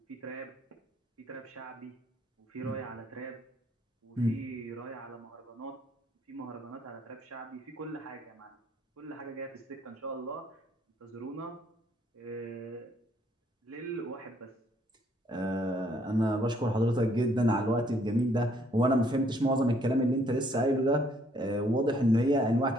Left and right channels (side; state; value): both; normal; correlation 0.66